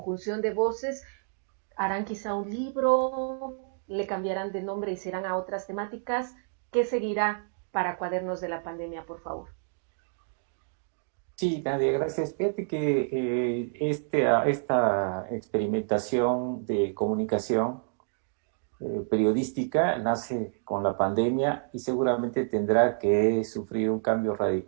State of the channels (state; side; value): silent; left; digital silence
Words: de voces, harán quizá un libro, le cambiarán de nombre y serán a otras temáticas. ¿Qué seguirá para Cuadernos de la Pandemia, por favor? Sí, Nadia, gracias. Fíjate que esta experimentación de comunicación periodística nace con la pandemia y seguramente tendrá que sufrir un cambio